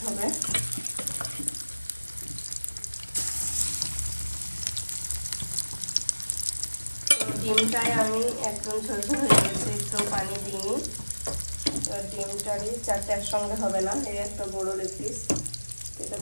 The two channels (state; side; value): inverted; both; correlation -1.00